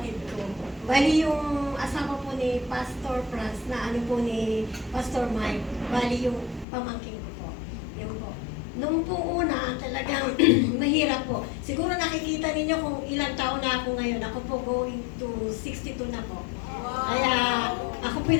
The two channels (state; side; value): drops out; right; at 6.7 s